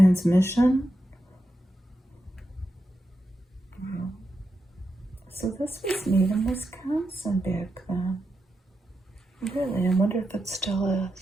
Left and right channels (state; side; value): normal; both; correlation 0.87